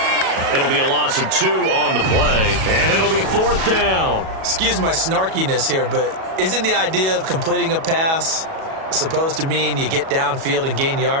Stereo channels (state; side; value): late; left; 37 ms